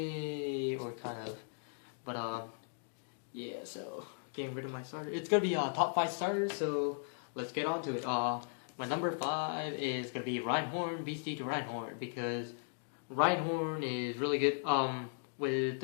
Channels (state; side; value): silent; right; digital silence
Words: or kind of, but yeah, so, getting rid of my starter. It's gonna be top 5 starters, so let's get on to it. My number 5 is gonna be Reinhorn, BCD Reinhorn, because Reinhorn is really good, with